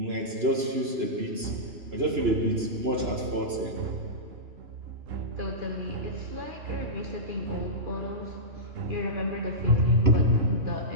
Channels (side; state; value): left; late; 3.0 ms